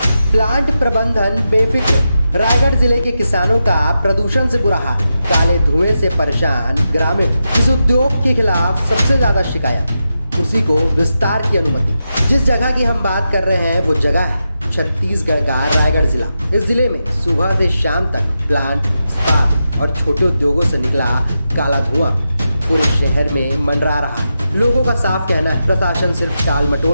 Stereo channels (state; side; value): inverted; both; correlation -0.88